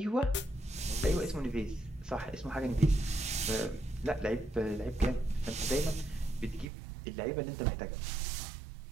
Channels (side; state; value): left; drops out; at 6.7 s